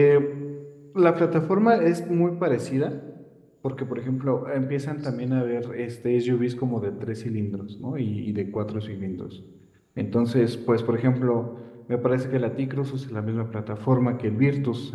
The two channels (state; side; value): identical; both; correlation 1.00